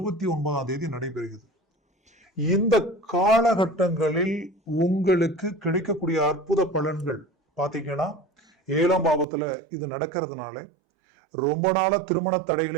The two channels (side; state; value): left; drops out; at 9.2 s